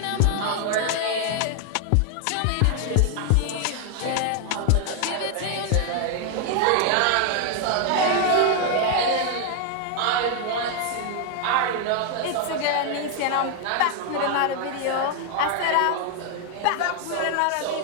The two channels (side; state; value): both; different; correlation 0.00